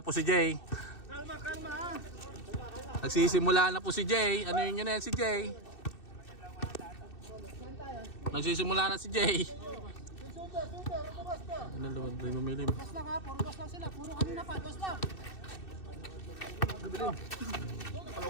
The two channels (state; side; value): late; right; 2.6 ms